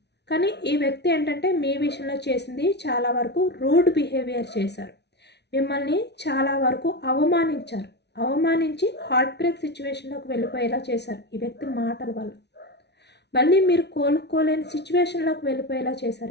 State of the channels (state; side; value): late; right; 0.50 ms